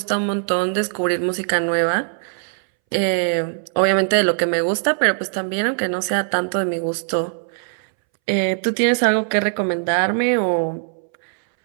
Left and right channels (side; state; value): left; silent; 64 dB below the other